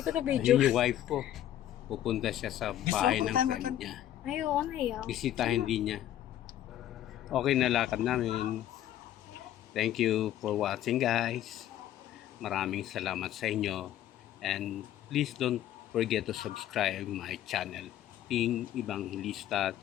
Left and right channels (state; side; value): quieter; right; 12.1 dB